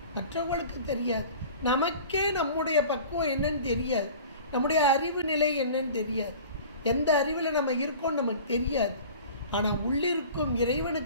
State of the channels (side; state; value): both; inverted; correlation -0.42